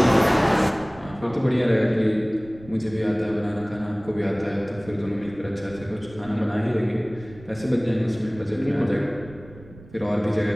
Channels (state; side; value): noise; right; rumble, 20 dB below the sound